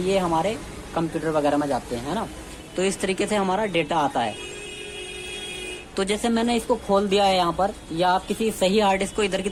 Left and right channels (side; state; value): both; identical; correlation 1.00